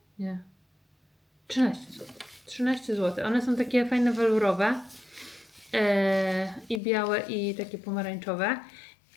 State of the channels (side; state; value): right; drops out; at 6.8 s